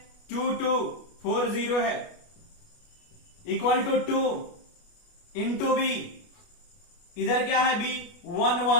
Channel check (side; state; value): right; late; 29 ms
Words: 2 2 4 0 है, इक्वल टू 2 इंटू बी, इधर क्या है b 1